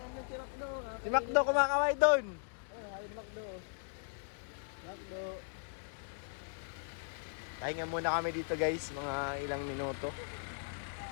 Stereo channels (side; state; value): right; silent; digital silence